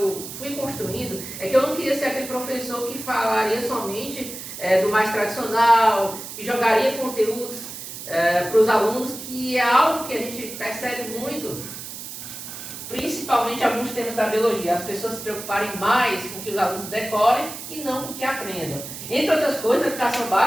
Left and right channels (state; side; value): noise; right; hiss, 10 dB below the sound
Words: fui construindo é que eu não queria ser aquele professor que falaria somente do mais tradicional, que jogaria conteúdos para os alunos, que é algo que a gente percebe muito, principalmente alguns temas da biologia, as pessoas se preocuparem mais com que os alunos decorem e não com que aprendam. Entre outras coisas, na educação